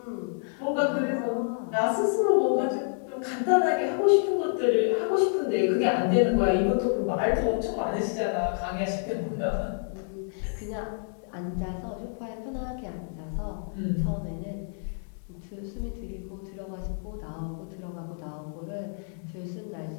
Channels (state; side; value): silent; right; digital silence